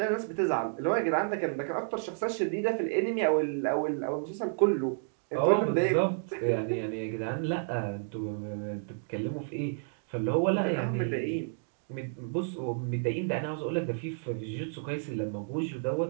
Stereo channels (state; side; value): silent; left; digital silence